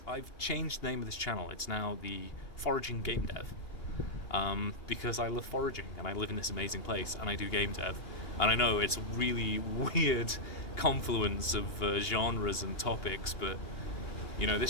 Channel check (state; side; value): late; right; 2.8 ms